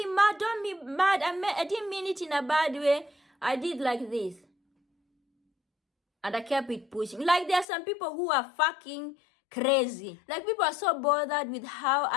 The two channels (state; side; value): drops out; right; at 7.7 s